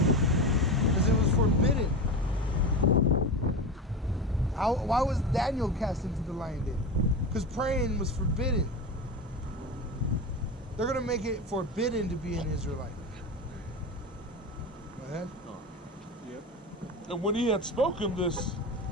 Because it was forbidden. Why was Daniel cast into the lion den? Because praying was forbidden. They're going to make it forbidden to be an Israelite. Go ahead. Yep. And when he had spoken this,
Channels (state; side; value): normal; both; correlation 0.23